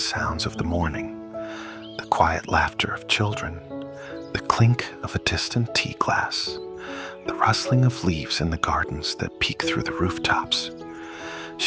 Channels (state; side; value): identical; both; correlation 1.00